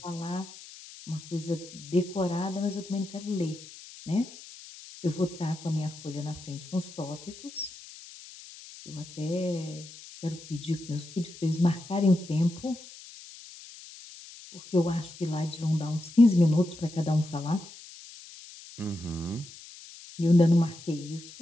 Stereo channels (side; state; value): left; noise; hiss, 17 dB below the sound